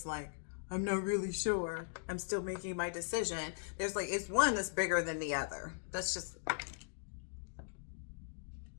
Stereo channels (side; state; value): right; silent; digital silence